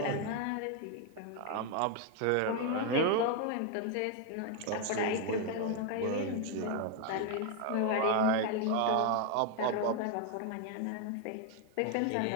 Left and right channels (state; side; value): different; both; correlation 0.01